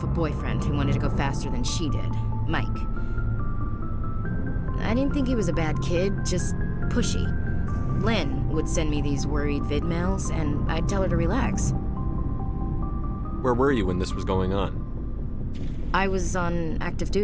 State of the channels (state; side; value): identical; both; correlation 1.00